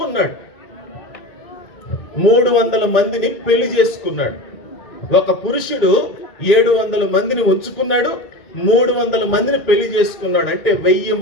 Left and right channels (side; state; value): right; late; 1.9 ms